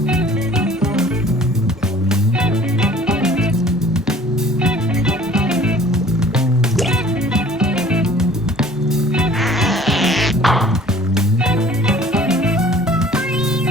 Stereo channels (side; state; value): both; normal; correlation 0.51